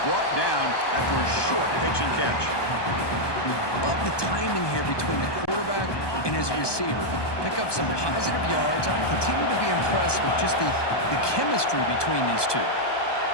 brought down after a short pitch and catch. Love the timing here between the quarterback and his receiver. Pick up some positive yards. I continue to be impressed with just the chemistry between these two.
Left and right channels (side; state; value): right; late; 1.2 ms